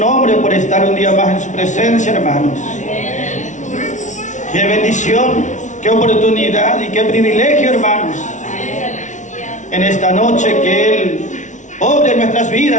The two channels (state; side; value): late; right; 0.36 ms